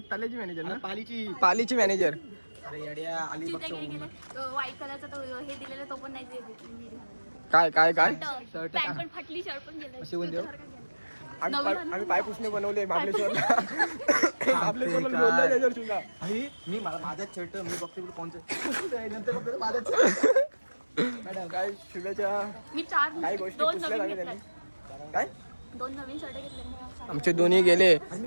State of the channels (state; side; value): inverted; both; correlation -1.00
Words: तलेची मॅनेजर ना पालीची मॅनेजर अरे येड्या अलिबागचं व्हाईट कलरचा तो हे दिलेला तो पण नाही दिलेला. काय काय काय पॅन्ट पण फाटली शर्ट पण गेलं अशी कोण देऊ? आम्ही पायपुसणे बनवले महाबळेश्वरला महाबळेश्वरला लोणलं त्याच्यावर सुद्धा मी माझाच शर्ट मी बघते कोणतं नंतर बघतो माझाच मॅडम काय शुभेच्छा मी चार काही गोष्टी दोन पुसल्या नवीन लागल्या घेतले त्यांनी काय दोन नवीन शर्ट घेतले आमचे दोन्ही गेले